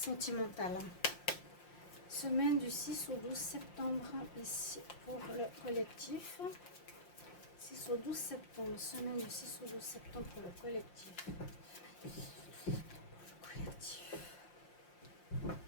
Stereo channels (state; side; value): late; right; 5.7 ms